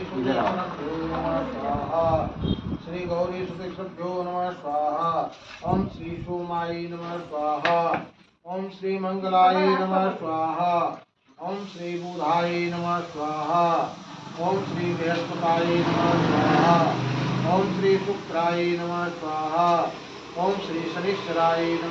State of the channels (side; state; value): both; identical; correlation 1.00